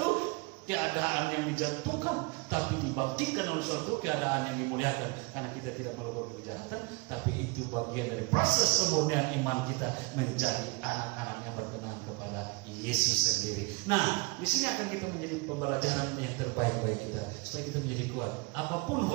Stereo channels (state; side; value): quieter; left; 27.1 dB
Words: keadaan yang dijatuhkan, tapi dibangkitkan oleh suatu keadaan yang dimuliakan. Karena kita tidak melakukan kejahatan, tapi itu bagian dari proses kemurnian iman kita menjadi anak-anak yang berkenan kepada Yesus sendiri. Nah, di sini akan kita menjadi pembelajaran yang terbaik bagi kita, supaya kita menjadi kuat. Apapun